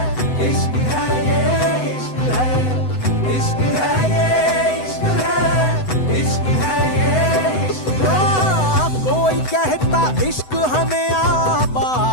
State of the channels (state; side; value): late; right; 7.9 ms